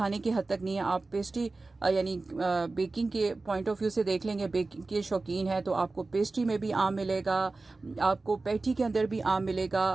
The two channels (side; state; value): left; quieter; 3.5 dB